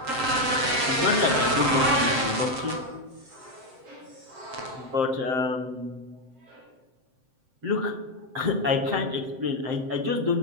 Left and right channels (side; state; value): left; late; 7.6 ms